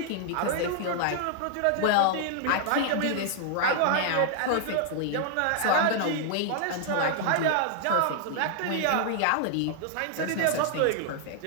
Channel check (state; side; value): different; both; correlation 0.00